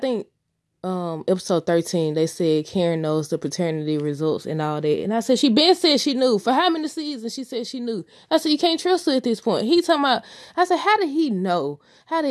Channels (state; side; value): identical; both; correlation 1.00